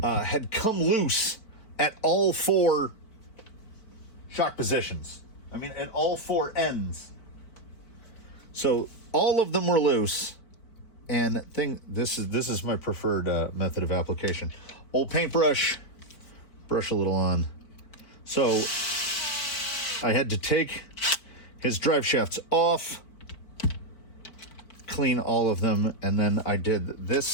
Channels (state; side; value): late; right; 4.5 ms